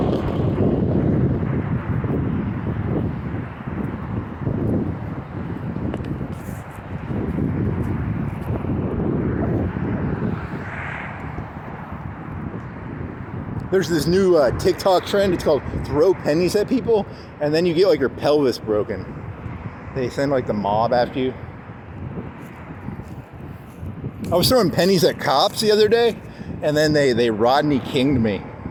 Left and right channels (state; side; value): identical; both; correlation 1.00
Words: There's this new TikTok trend. It's called throw pennies at people, and then you get like your pelvis broken. They send like the mob after you. I was throwing pennies at cops the other day, and then they Rodney King'd me.